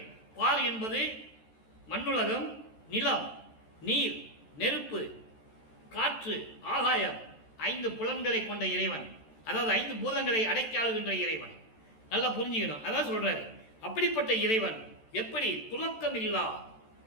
பால் என்பது மண்ணுலகம், நிலம், நீர், நெருப்பு, காற்று, ஆகாயம், 5 புலன்களை கொண்ட இறைவன். அதாவது 5 பூதங்களை அடக்கி ஆளுகின்ற இறைவன். நல்லா புரிஞ்சுக்கணும். அதான் சொல்றாரு. அப்படிப்பட்ட இறைவன் எப்படி துலக்கம் இல்லா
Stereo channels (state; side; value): late; right; 13 ms